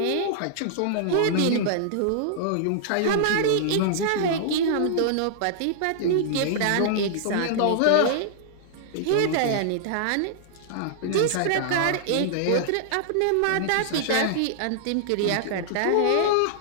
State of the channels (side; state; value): both; different; correlation -0.01